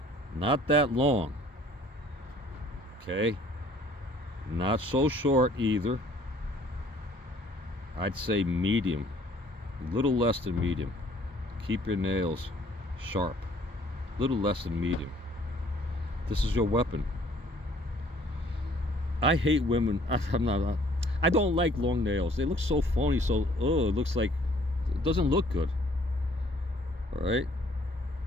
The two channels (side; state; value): both; normal; correlation 0.58